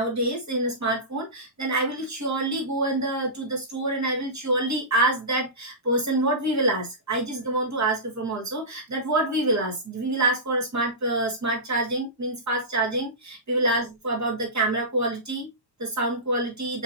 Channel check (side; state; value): both; normal; correlation -0.19